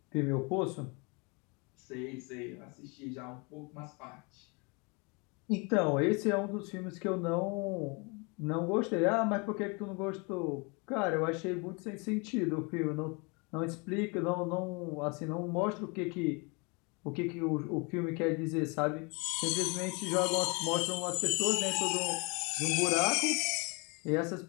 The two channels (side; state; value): right; quieter; 30.6 dB